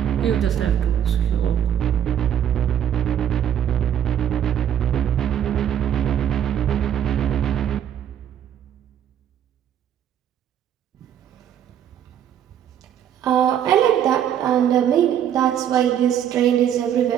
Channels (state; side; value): quieter; left; 9.9 dB